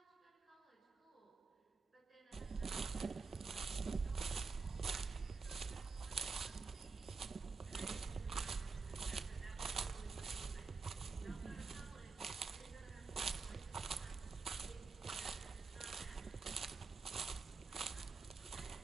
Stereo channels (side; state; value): left; quieter; 4.5 dB